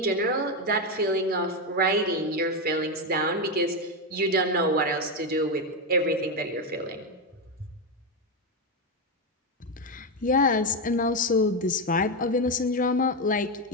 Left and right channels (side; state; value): both; normal; correlation 0.09